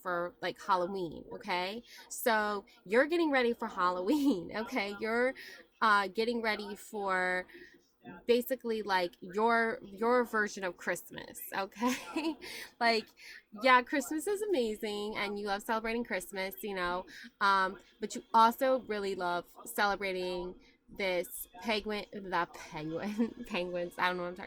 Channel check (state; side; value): identical; both; correlation 1.00